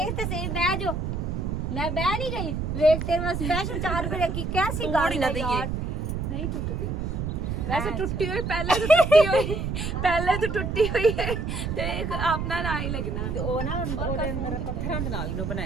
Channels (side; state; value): right; noise; rumble, 2 dB below the sound